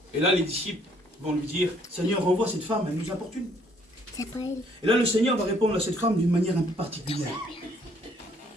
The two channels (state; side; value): normal; both; correlation 0.64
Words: Et là, les disciples vont lui dire: Seigneur, renvoie cette femme, elle nous importune. C'est pas elle. Et là, le Seigneur va répondre à cette femme d'une manière un peu particulière.